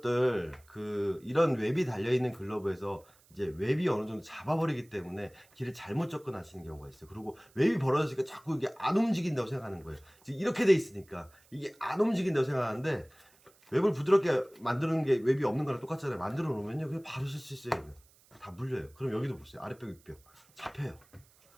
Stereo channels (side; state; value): right; noise; hiss, 30 dB below the sound